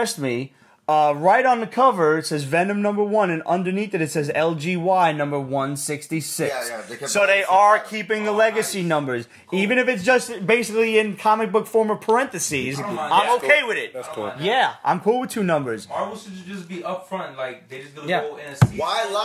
me. Right on the cover, it says Venom #1, and underneath it says LGY number 166. So they are keeping the legacy numbers, even if it's just basically in comic book form of parentheses. I'm okay with it. That's cool. Yeah, I'm cool with 2 numbers. Marvel should just be upfront, like they just gonna go in a season. Why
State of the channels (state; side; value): identical; both; correlation 1.00